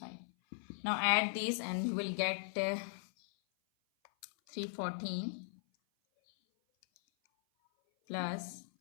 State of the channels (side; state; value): right; silent; 52 dB below the other